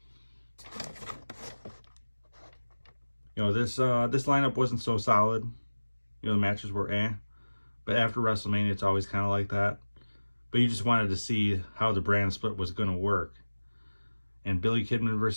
You know, this lineup wasn't so solid. You know, the matches were eh. But after WrestleMania, it's always kind of like that. But you just wanted to see how the brand split was going to work. And Billy Kidman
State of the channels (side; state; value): both; inverted; correlation -1.00